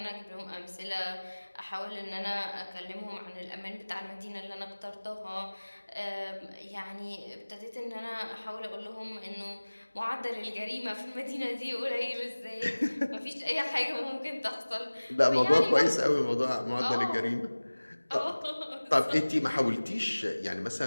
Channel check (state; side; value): inverted; both; correlation -1.00